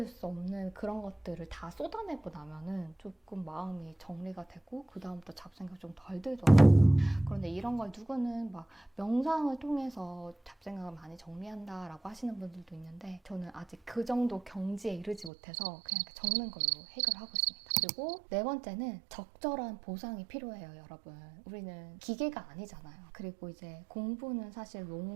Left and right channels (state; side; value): drops out; left; at 15.3 s